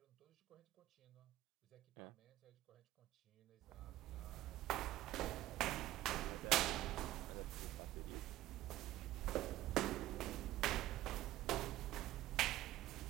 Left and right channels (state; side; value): quieter; left; 15.4 dB